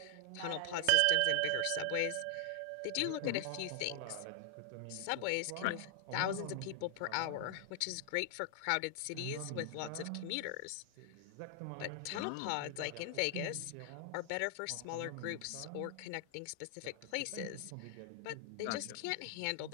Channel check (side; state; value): both; different; correlation 0.00